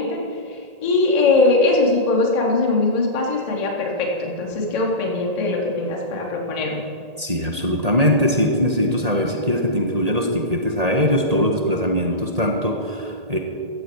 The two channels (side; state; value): left; late; 1.8 ms